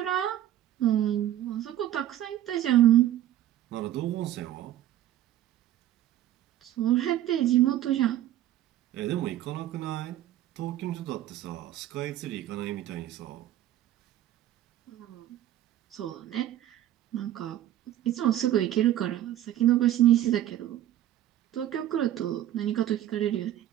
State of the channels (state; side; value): quieter; left; 12.7 dB